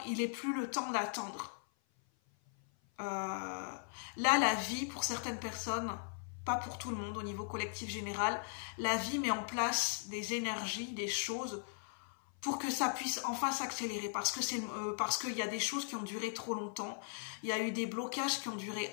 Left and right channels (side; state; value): right; silent; 52 dB below the other